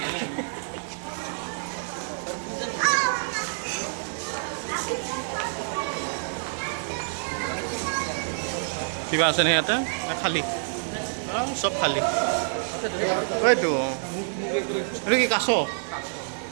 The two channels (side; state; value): left; silent; digital silence